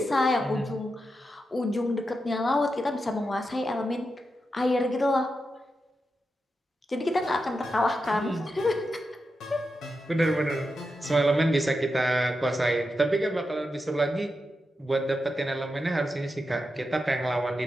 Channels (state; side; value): normal; both; correlation 0.88